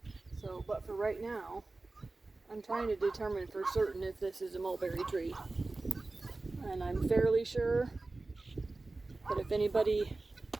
So, but for right now, I'm trying to determine for certain if this is a mulberry tree. And I'm fairly sure, but if anybody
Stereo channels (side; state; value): left; quieter; 3.3 dB